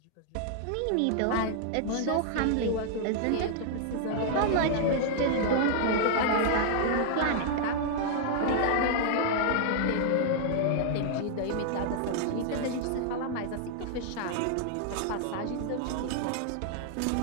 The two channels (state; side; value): different; both; correlation -0.01